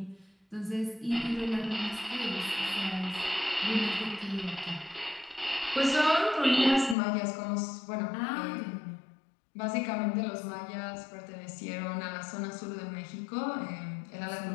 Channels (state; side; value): drops out; right; at 7.0 s